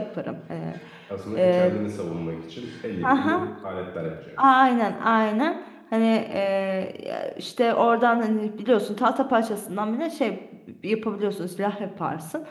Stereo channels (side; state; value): both; identical; correlation 1.00